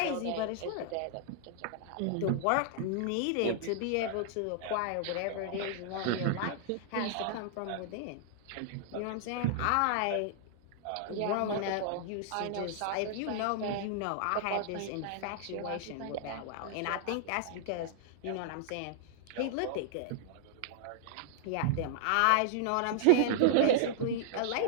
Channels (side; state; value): both; different; correlation -0.01